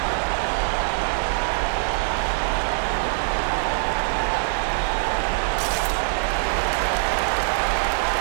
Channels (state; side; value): silent; left; 63 dB below the other